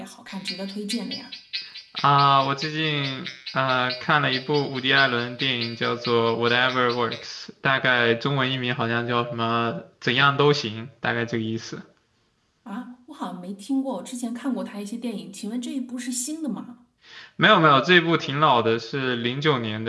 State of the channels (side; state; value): both; identical; correlation 1.00